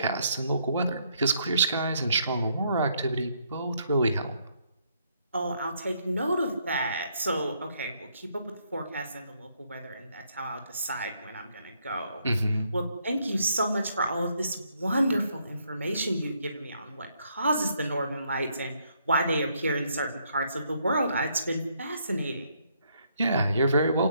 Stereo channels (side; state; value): both; inverted; correlation -0.71